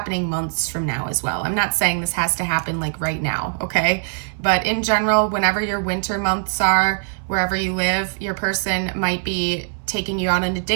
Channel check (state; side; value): silent; left; 65 dB below the other